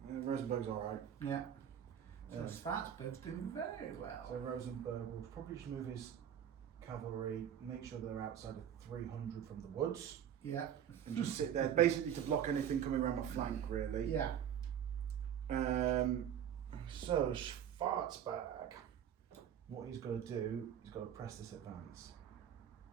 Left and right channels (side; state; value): left; quieter; 9.4 dB